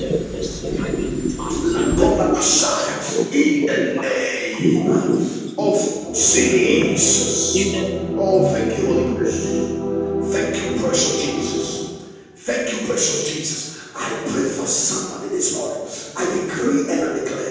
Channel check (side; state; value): both; identical; correlation 1.00